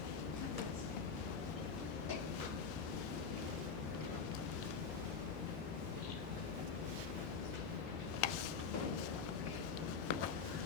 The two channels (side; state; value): right; quieter; 5.6 dB